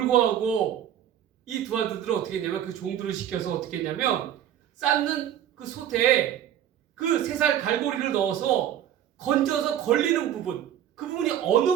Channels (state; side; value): quieter; left; 10.4 dB